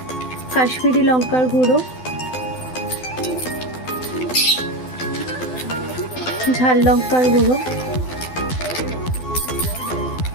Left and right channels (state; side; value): late; right; 12 ms